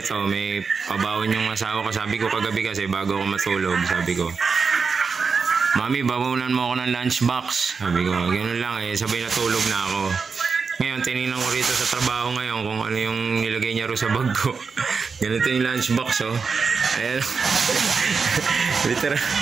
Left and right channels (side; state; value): left; quieter; 5.2 dB